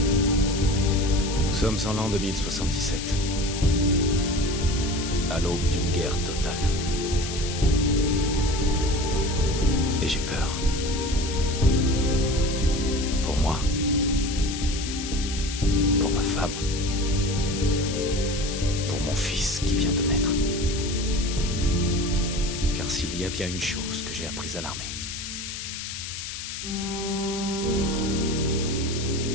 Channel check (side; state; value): left; noise; hiss, 7 dB below the sound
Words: Nous sommes en l'an 2077. À l'aube d'une guerre totale. Et j'ai peur. Pour moi. Pour ma femme. Pour mon fils qui vient de naître. Car s'il y a bien une chose que j'ai apprise à l'armée,